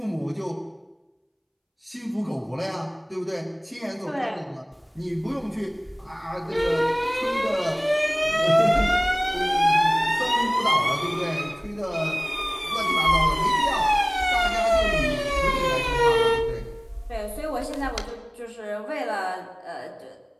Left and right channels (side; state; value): both; identical; correlation 1.00